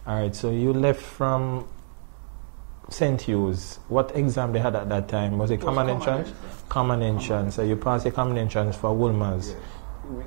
Alright, so you left from St. Hugh's. What exam they had at that time? Was It was common entrance. Common entrance. So you passed the common entrance for Woolmer's. Yes.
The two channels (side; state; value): left; silent; digital silence